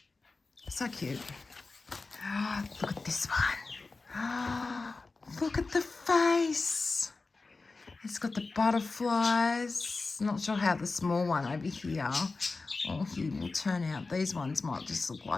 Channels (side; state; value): right; quieter; 3.8 dB